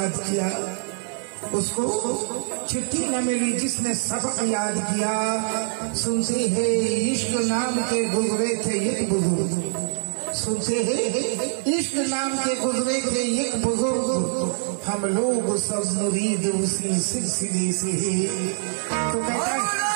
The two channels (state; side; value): silent; left; 62 dB below the other